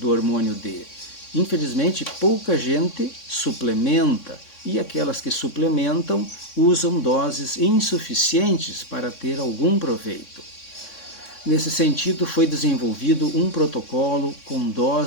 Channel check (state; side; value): late; right; 3.6 ms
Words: hormônio D. Infelizmente, pouca gente suplementa e aquelas que suplementam usam doses insuficientes para ter algum proveito. Nesse sentido, foi desenvolvido um protocolo com